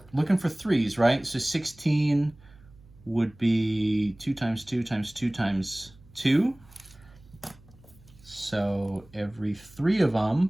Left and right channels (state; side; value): noise; right; hum, 25 dB below the sound